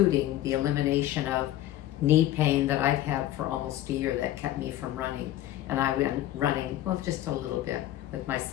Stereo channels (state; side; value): quieter; right; 13.9 dB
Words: the elimination of knee pain that I've had for almost a year that kept me from running. And I went running, well, just a little bit with my